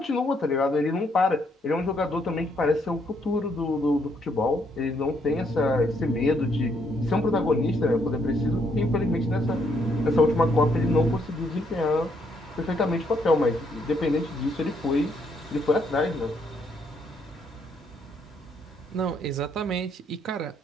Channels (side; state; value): both; normal; correlation 0.72